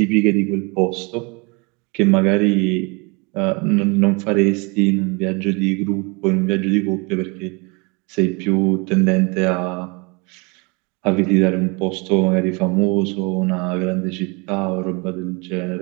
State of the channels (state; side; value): quieter; left; 29.9 dB